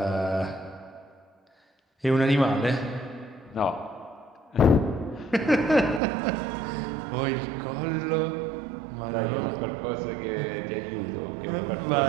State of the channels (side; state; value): left; drops out; at 6.0 s